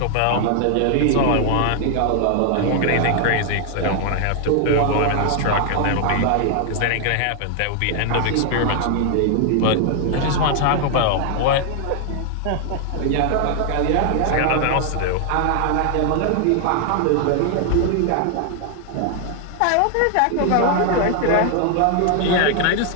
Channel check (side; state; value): both; different; correlation 0.00